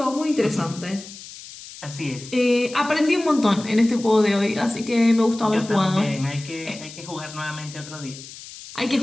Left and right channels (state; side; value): noise; left; hiss, 15 dB below the sound